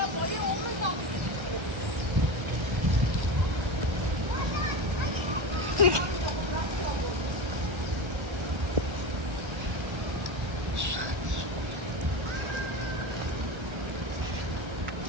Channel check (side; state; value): left; late; 1.3 ms